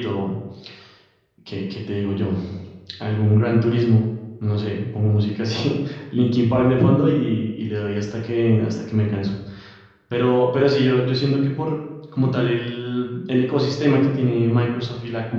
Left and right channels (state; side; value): identical; both; correlation 1.00